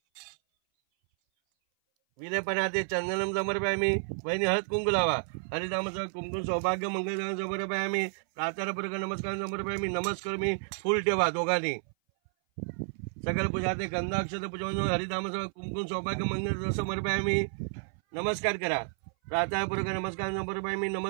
विलेपणाते चंदनम समर्पयामी वहिनी हळद कुंकू लावा हरिधामाचं कुंकुम सौभाग्य मंगल समर्पयामी प्रातःपूर्वक नमस्कार समर्पयामी नमस्कार मी फुल ठेवा दोघांनी सकल पूजा ते गंधा अक्षत पूजा हरिधामाचं कुंकुम सौभाग्य मंगल समर्पयामी नमस्कार करा प्रातःपूर्वक नमस्कार समर्पयामी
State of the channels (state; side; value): silent; left; 57 dB below the other